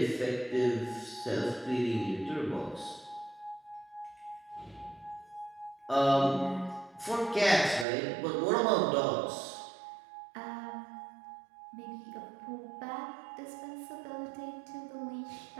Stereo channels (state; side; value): drops out; left; at 7.9 s